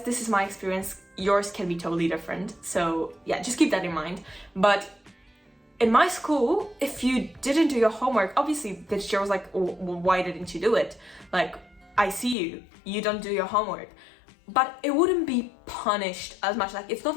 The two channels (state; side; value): drops out; right; at 12.4 s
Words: this is my experience. Yours can be totally different. So yeah, just keep that in mind. But in my school, if you didn't do your homework, obviously the teacher was like, oh, well, why didn't you do it? Like, I see you don't do your homework. But it wouldn't be punished as much. Like, it's not